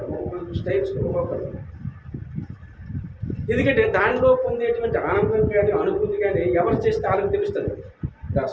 స్టైల్స్ ఒక్కొక్కరు. ఎందుకంటే దానిలో పొందేటువంటి ఆనందం కానీ అనుభూతి కానీ ఎవరు చేస్తే వాళ్ళకి తెలుస్తుంది.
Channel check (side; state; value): both; identical; correlation 1.00